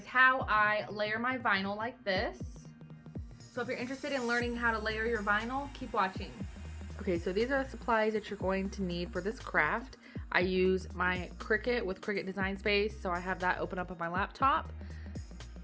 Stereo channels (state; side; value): identical; both; correlation 1.00